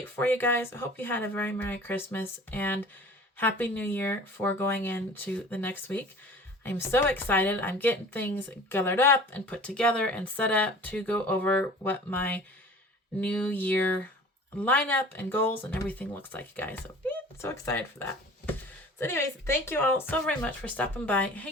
for you guys. I hope you had a very Merry Christmas and Happy New Year for going into the next week. I'm so excited. I'm getting things gathered up and put together and set up to go over what my New Year lineup and goals and everything looks like, you guys. So, so excited for that. So anyways, thank you all so very much for stopping by,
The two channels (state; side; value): normal; both; correlation 0.44